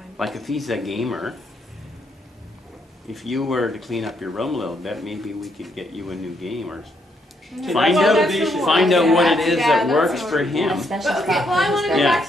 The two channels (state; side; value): normal; both; correlation 0.74